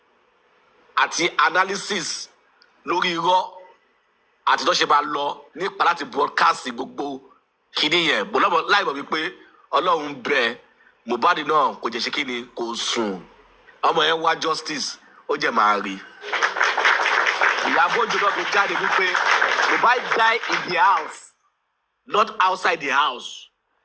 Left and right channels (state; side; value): identical; both; correlation 1.00